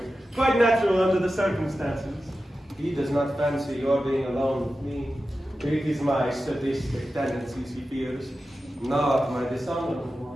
Quite natural under the circumstances. He does not fancy your being alone with me. It is my sadistic tendencies he fears, not my dishonorable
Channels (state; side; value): normal; both; correlation 0.93